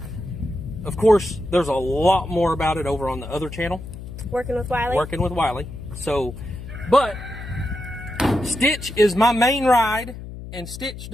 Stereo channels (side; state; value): left; noise; hum, 11 dB below the sound